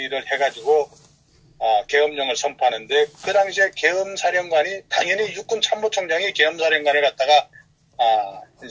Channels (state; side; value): identical; both; correlation 1.00